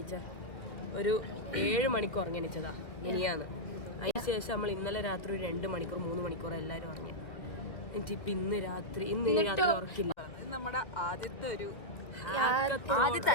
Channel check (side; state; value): right; late; 1.7 ms